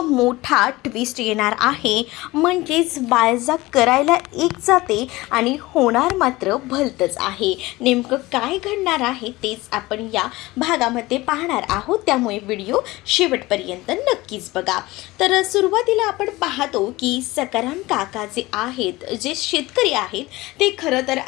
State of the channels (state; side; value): quieter; right; 20.0 dB